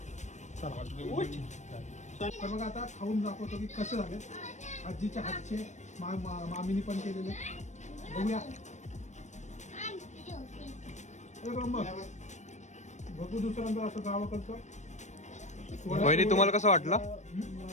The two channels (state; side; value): late; right; 0.34 ms